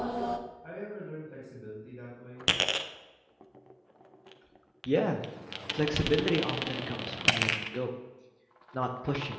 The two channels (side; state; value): both; identical; correlation 1.00